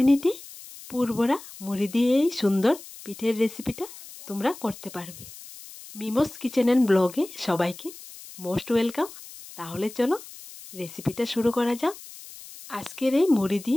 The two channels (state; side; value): noise; left; hiss, 16 dB below the sound